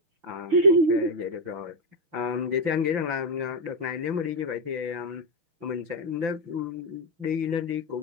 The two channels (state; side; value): late; left; 5.9 ms